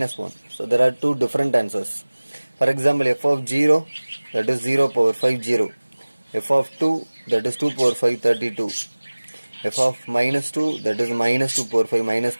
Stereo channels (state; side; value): inverted; both; correlation -1.00